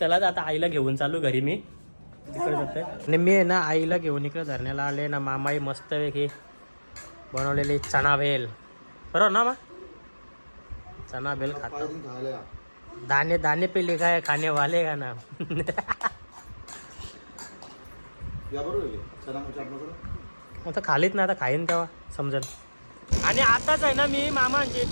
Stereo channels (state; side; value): inverted; both; correlation -1.00